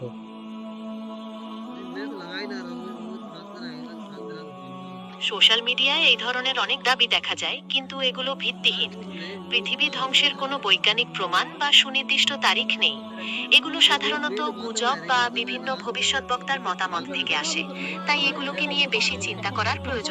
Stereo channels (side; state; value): both; identical; correlation 1.00